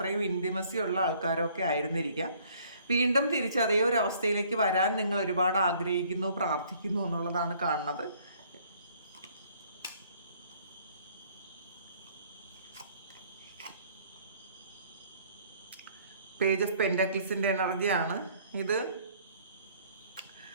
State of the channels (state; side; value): inverted; both; correlation -0.60